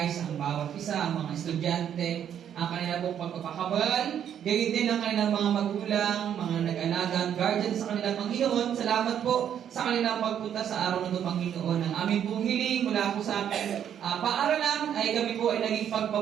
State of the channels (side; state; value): left; quieter; 9.4 dB